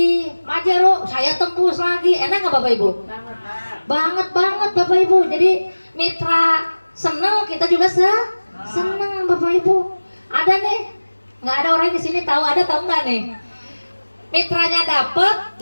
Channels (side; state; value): both; inverted; correlation -1.00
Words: Pajero, saya tembus lagi. Enak nggak Bapak Ibu? Banget Bapak Ibu. Jadi mitra seneng, kita juga seneng Bapak Ibu. Ada nih, nggak ada orang di sini tahu nggak nih? Mitranya dapat,